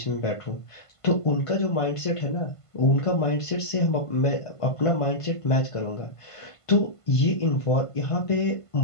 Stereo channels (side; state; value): right; late; 1.5 ms